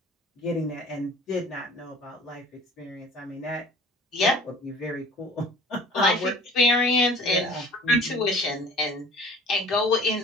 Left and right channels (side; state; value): both; normal; correlation 0.47